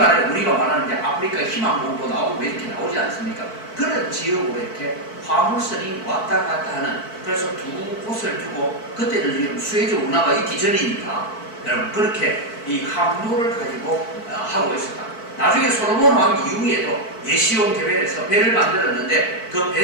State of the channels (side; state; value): right; late; 4.5 ms